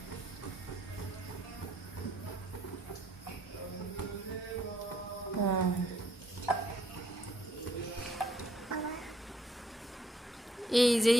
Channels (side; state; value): both; normal; correlation 0.68